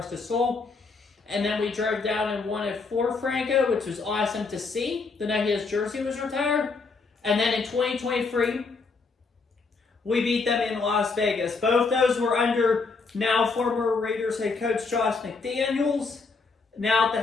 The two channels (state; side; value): quieter; right; 4.3 dB